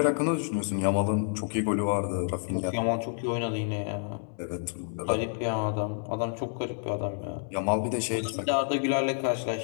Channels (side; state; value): right; silent; 59 dB below the other